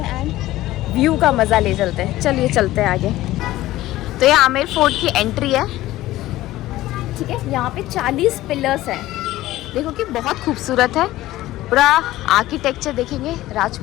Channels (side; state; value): right; quieter; 16.1 dB